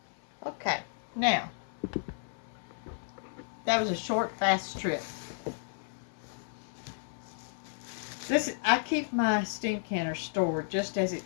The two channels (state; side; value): silent; right; 56 dB below the other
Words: Okay, now, that was a short, fast trip. I keep my steam canner stored just as